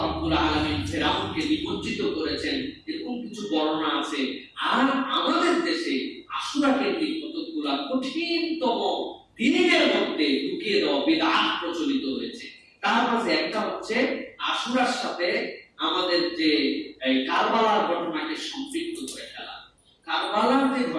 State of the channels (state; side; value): identical; both; correlation 1.00